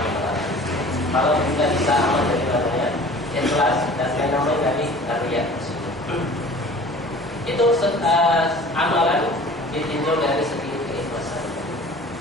Kalau kita bisa aman dari namanya ikhlas dan yang namanya dari riya. Itu amalan ditinjau dari segi keikhlasan.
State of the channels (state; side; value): normal; both; correlation 0.45